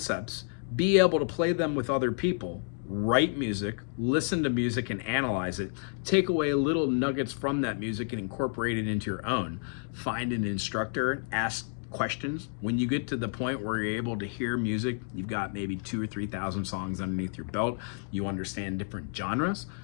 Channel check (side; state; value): right; silent; 58 dB below the other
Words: be able to play them with other people, write music, listen to music and analyze it, take away little nuggets from that music and incorporate it into your own. Find an instructor, ask questions. When you get to the point where you're able to hear music, you've got maybe 2,000 or 3,000 songs underneath your belt, you understand different genres,